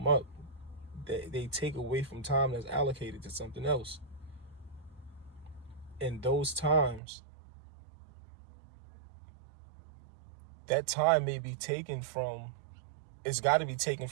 up, they take away from time that's allocated to something else. In those times, that time may be taken from, it's got to be taken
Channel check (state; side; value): drops out; left; at 7.0 s